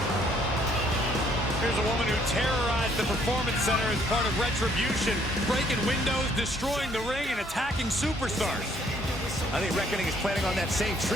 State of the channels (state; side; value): normal; both; correlation 0.65